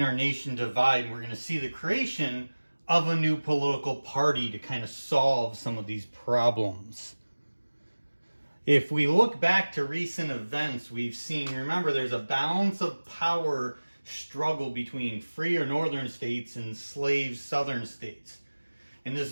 nation divide? We're going to see the creation of a new political party to kind of solve some of these problems. If we look back to recent events, we've seen, remember, there's a balance of power struggle between free or northern states and slave southern states. And this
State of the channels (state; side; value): inverted; both; correlation -1.00